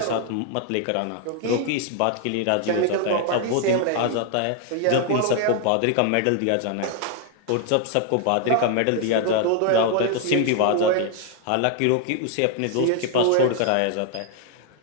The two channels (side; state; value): both; different; correlation 0.00